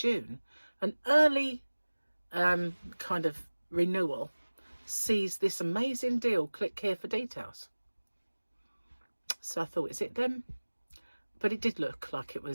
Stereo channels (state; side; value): inverted; both; correlation -1.00